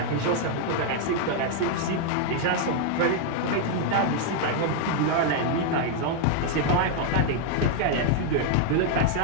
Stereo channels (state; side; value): different; both; correlation 0.00